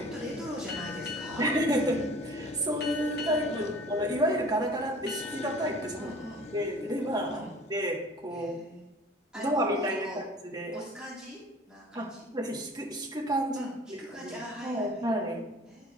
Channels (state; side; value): normal; both; correlation 0.46